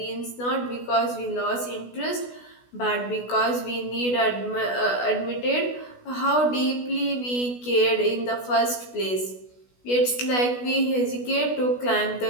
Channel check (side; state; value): right; late; 16 ms